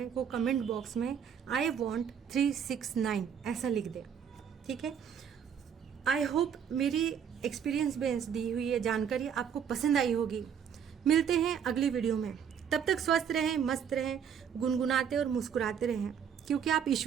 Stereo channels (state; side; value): quieter; left; 7.9 dB